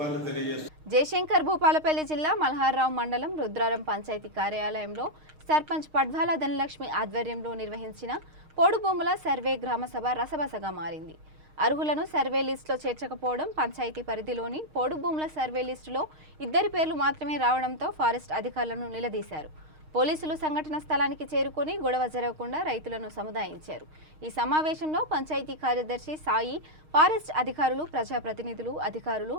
తెలియజేస్తూ జయశంకర్ భూపాలపల్లి జిల్లా మల్హార్రావు మండలం రుద్రారం పంచాయతీ కార్యాలయంలో సర్పంచ్ పడ్వాల ధనలక్ష్మి ఆధ్వర్యంలో నిర్వహించిన పోడు భూముల సర్వే గ్రామసభ రసబసగా మారింది. అర్హులను సర్వే లిస్టులో చేర్చకపోవడం, పంచాయతీ పరిధిలోని పోడు భూముల సర్వే లిస్టులో 2 పేర్లు మాత్రమే రావడంతో ఫారెస్ట్ అధికారులను నిలదీశారు. పోలీసులు సంఘటన స్థలానికి చేరుకొని గొడవ జరగకుండా రైతులను సముదాయించారు. ఈ సమావేశంలో పంచాయతీ కార్యదర్శి సాయి, ఫారెస్ట్ అధికారులు, ప్రజాప్రతినిధులు, అధికారులు,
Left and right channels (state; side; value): late; left; 6.5 ms